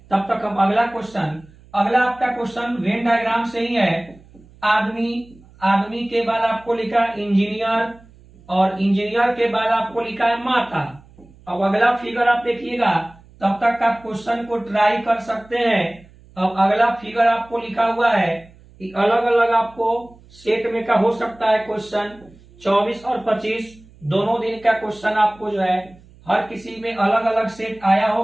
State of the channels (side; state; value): right; noise; hum, 25 dB below the sound